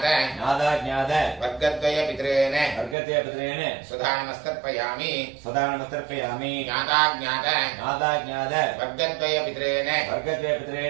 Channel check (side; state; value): left; drops out; at 3.0 s